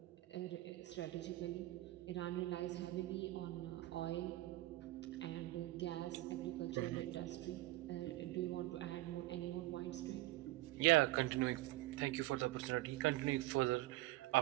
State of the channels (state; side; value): quieter; left; 17.9 dB